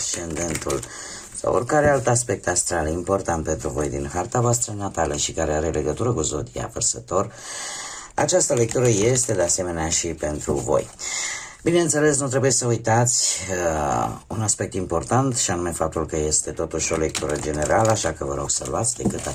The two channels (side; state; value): both; identical; correlation 1.00